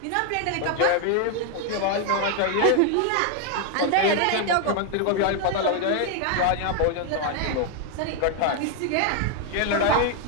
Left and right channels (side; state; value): both; different; correlation 0.00